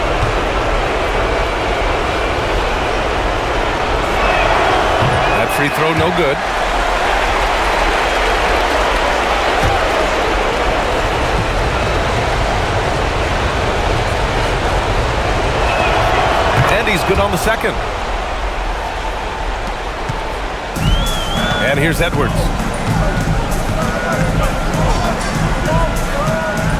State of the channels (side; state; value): both; identical; correlation 1.00